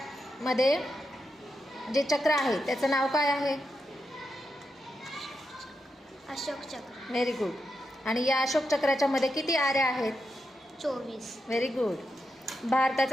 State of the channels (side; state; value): both; normal; correlation 0.86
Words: जे चक्र आहे त्याचं नाव काय आहे. अशोक चक्र. Very good. आणि या अशोक चक्राच्या मध्ये किती आऱ्या आहेत. 24. Very good.